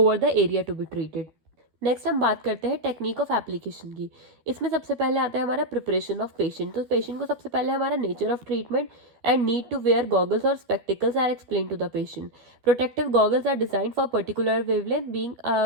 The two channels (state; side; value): late; left; 13 ms